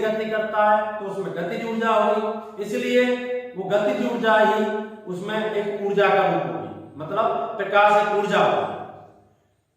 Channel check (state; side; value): identical; both; correlation 1.00